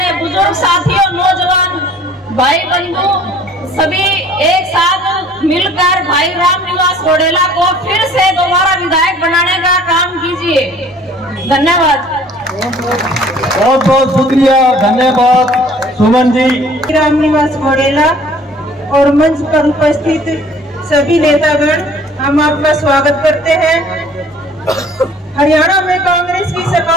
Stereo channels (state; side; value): normal; both; correlation 0.53